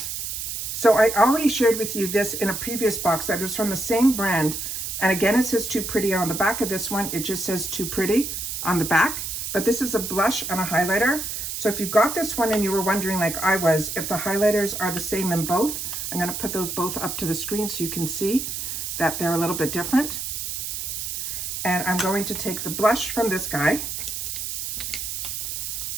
so I already shared with you this in a previous box that was from the same brand. And again, it says Too Pretty on the back of this one. It just says Too Pretty on the back, but this is a blush and a highlighter. So if you got this one and you were wondering, like I was, if the highlighters are the same in both, I'm going to put those both up to the screen so you can see that they're a little bit different. And I'm going to take the blush from this guy.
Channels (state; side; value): noise; right; hiss, 4 dB below the sound